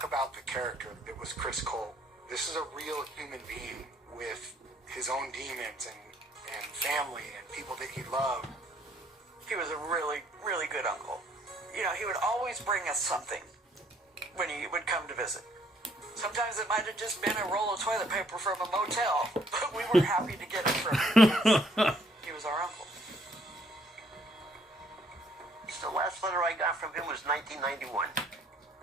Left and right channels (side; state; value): both; normal; correlation 0.65